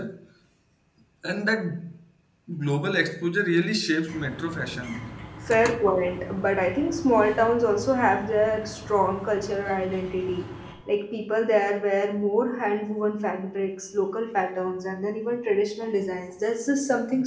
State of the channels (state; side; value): identical; both; correlation 1.00